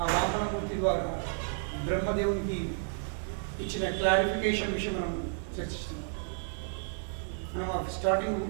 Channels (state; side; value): silent; left; digital silence